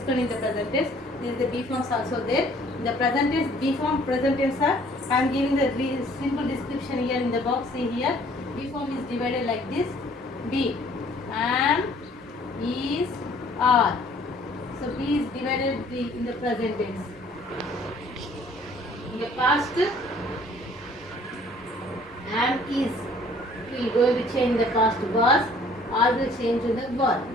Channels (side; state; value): both; normal; correlation 0.57